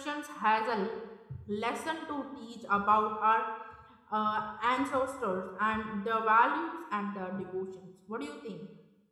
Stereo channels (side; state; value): both; identical; correlation 1.00